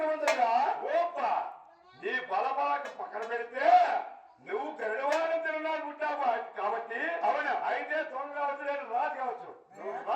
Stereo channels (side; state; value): both; identical; correlation 1.00